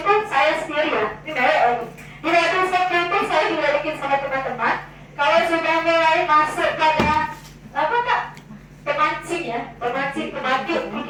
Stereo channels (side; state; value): both; identical; correlation 1.00